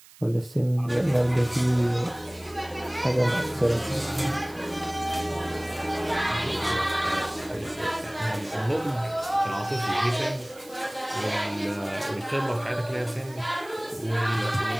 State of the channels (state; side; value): noise; right; hiss, 23 dB below the sound